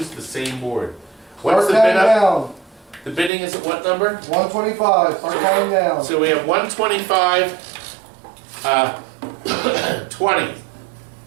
the same board. What's the Start bid counting up? down. The bidding is at what number? 125. Start counting down. So we have 125, 20,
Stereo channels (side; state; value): left; drops out; at 3.3 s